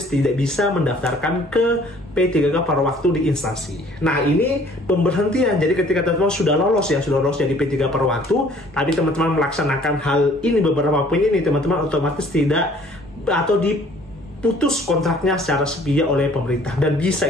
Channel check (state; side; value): normal; both; correlation 0.56